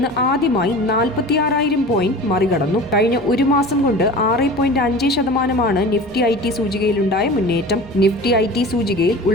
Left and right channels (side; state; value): both; normal; correlation 0.37